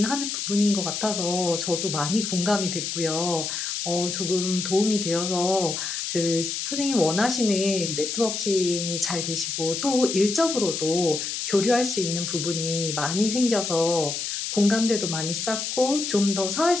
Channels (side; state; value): left; noise; hiss, 3 dB below the sound